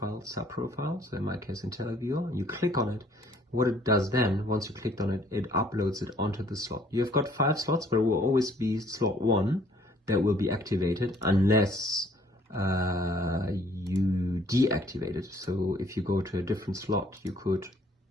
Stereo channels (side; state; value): both; normal; correlation 0.60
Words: sub-profile, so in my case IntelliViewer, and you click on it. What it does then, once you clicked on it, it uploads it onto the slot. You've got 5 slots, but it will always be slot 1 that will be activated unless you deactivate it. So if you go to a different slot, you could,